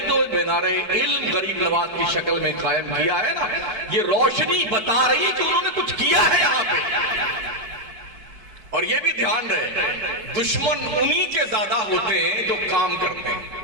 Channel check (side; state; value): left; late; 4.5 ms